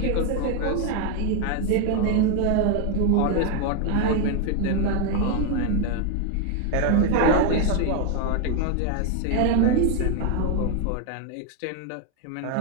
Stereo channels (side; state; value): both; different; correlation 0.01